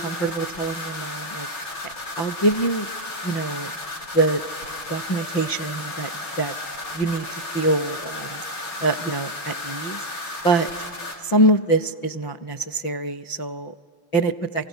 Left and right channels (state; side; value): late; right; 5.9 ms